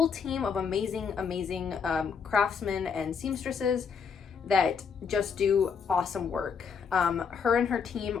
team of amazing craftsmen and seamstresses that just do awesome work. Her and her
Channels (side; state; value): right; quieter; 6.2 dB